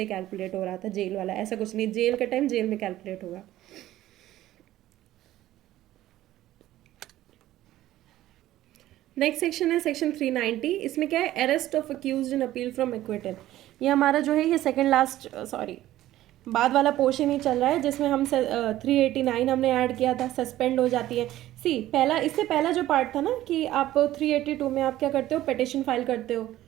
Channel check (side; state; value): left; quieter; 14.4 dB